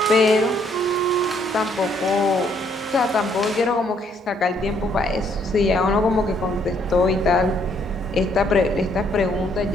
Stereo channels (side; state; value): both; normal; correlation 0.68